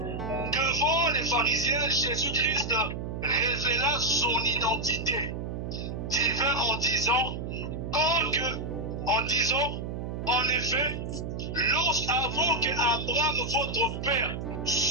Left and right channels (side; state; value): right; noise; hum, 5 dB below the sound